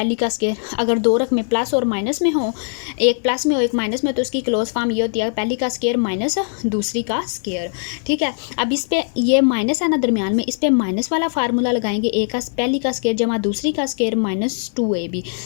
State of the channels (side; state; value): right; silent; digital silence